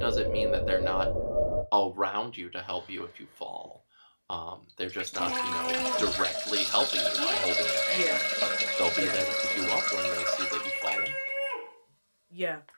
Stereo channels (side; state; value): both; inverted; correlation -1.00